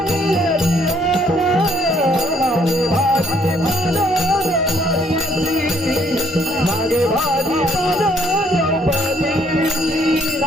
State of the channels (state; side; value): normal; both; correlation 0.66